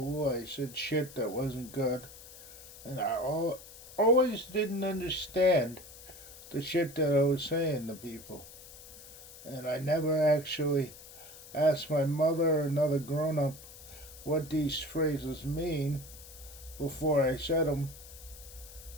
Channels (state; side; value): noise; left; hiss, 17 dB below the sound